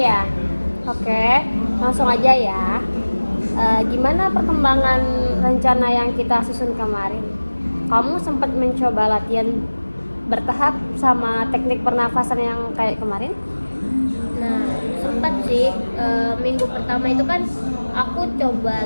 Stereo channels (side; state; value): both; inverted; correlation -1.00